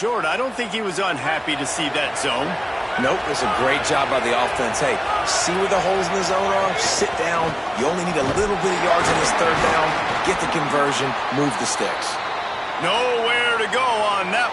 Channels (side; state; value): both; identical; correlation 1.00